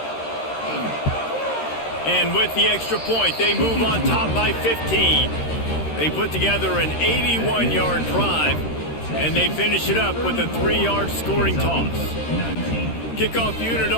And with the extra point, they move on top by 15. They put together an 81-yard drive, and they finish it up with a 3-yard scoring toss. Kickoff unit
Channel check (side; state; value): right; late; 13 ms